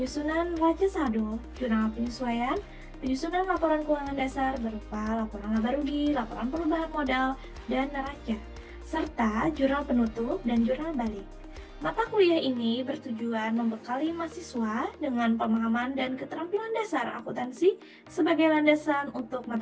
raja saldo, jurnal penyesuaian, penyusunan laporan keuangan dasar berupa laporan laba rugi, laporan perubahan modal, dan neraca, serta jurnal penutup dan jurnal balik. Mata kuliah ini bertujuan membekali mahasiswa dengan pemahaman dan keterampilan dasar akuntansi sebagai landasan untuk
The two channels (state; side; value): identical; both; correlation 1.00